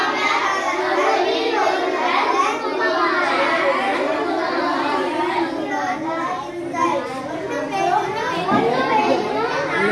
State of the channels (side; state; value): both; identical; correlation 1.00